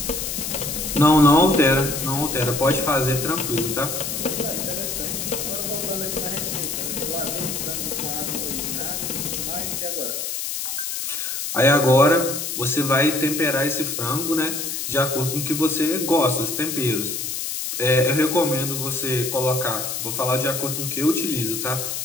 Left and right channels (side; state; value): left; noise; hiss, 3 dB below the sound